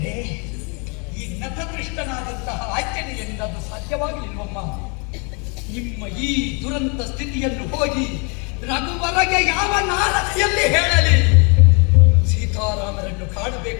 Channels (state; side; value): quieter; right; 34.0 dB